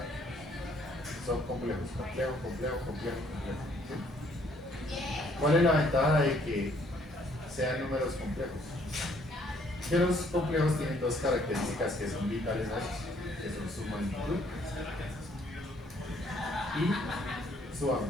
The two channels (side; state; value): both; normal; correlation 0.65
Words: son complejos, complejo. ¿Sí? ¿Cuál es la ventaja de que sean números complejos? Que los complejos tienen dos características que son vitales a ellos, que son su magnitud y su